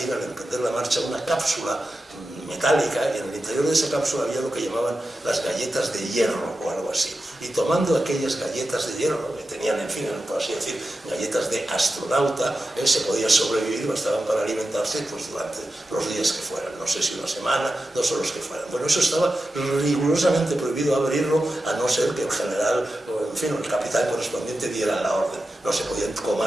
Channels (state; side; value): normal; both; correlation 0.91